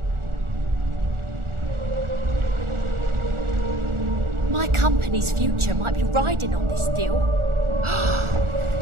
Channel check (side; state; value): left; late; 1.4 ms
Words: My company's future might be riding on this deal.